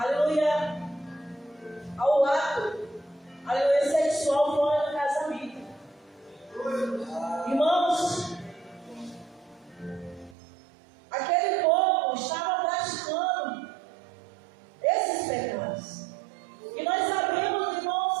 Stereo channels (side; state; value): left; drops out; at 10.4 s